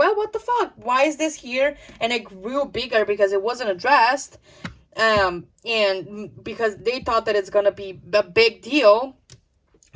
what the fuck? Why is this here? And it grew bigger because it wasn't addressed. And because they thought that it's gonna be a big deal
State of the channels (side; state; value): both; identical; correlation 1.00